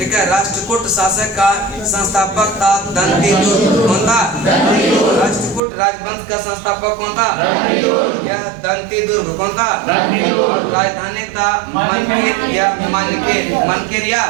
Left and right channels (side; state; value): left; drops out; at 5.6 s